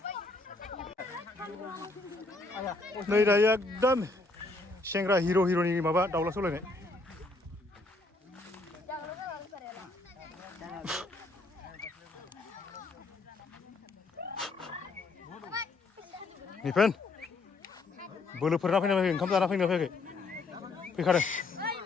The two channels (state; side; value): quieter; right; 3.4 dB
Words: नै दायो एकदम सेंग्रा हिर'नि माबा दाउला सौलायनाय निफेन बोलोफोरना फैना फैयाखै ओंखाम जाना फैना फैयाखै फैखादों